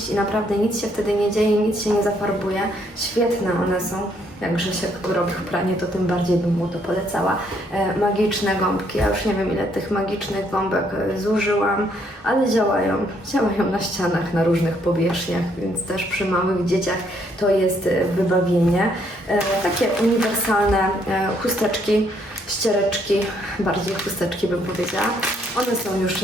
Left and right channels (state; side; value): normal; both; correlation 0.70